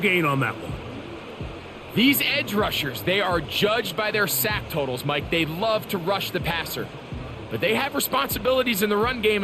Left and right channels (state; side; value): identical; both; correlation 1.00